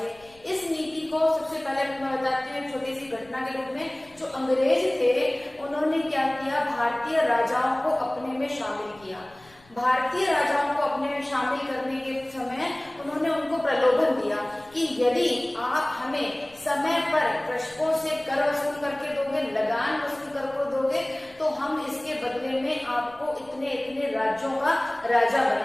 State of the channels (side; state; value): left; noise; rumble, 27 dB below the sound